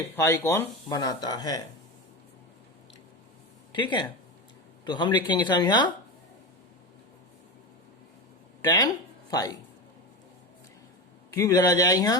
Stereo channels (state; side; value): normal; both; correlation 0.19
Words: फाई कोण बनाता है। ठीक है, तो हम लिखेंगे सब यहाँ tan फाई क्यूब इधर आ जाएगा